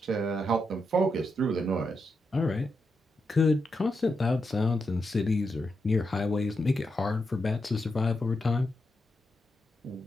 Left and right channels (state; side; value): normal; both; correlation 0.85